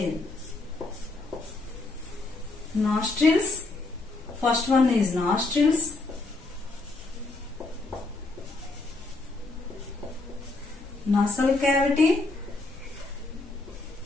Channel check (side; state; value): right; quieter; 3.3 dB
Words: Nostrils. First one is nostrils. Nasal cavity.